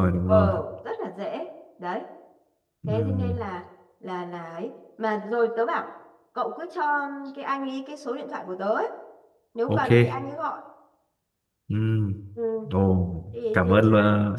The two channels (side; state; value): both; identical; correlation 1.00